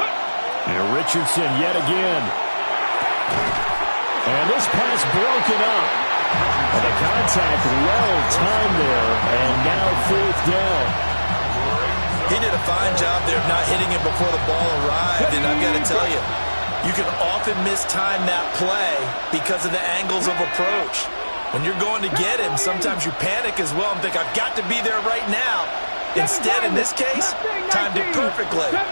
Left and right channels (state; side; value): inverted; both; correlation -1.00